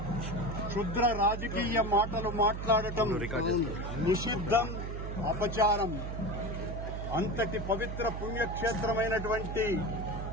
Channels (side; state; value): right; noise; hum, 5 dB below the sound